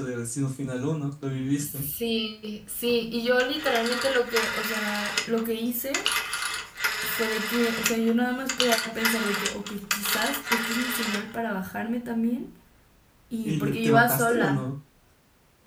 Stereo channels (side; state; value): both; identical; correlation 1.00